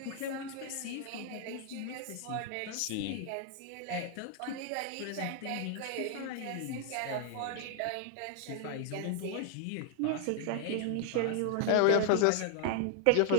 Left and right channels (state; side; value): different; both; correlation 0.00